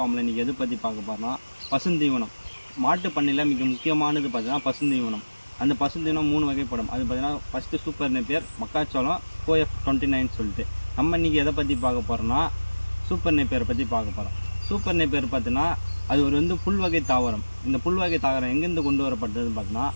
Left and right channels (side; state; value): both; inverted; correlation -1.00